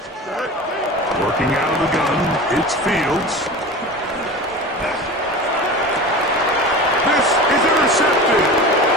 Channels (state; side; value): normal; both; correlation 0.32